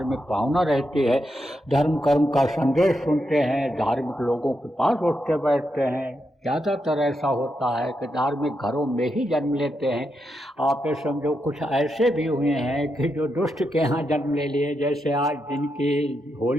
भावना रहती है, धर्म कर्म का संदेश सुनते हैं, धार्मिक लोगों के पास उठते बैठते हैं। ज़्यादातर ऐसा होता है कि धार्मिक घरों में ही जन्म लेते हैं। आप ये समझो कुछ ऐसे भी हुए हैं कि जो दुष्ट के यहाँ जन्म ले लिए, जैसे आज जिनकी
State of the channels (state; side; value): normal; both; correlation 0.84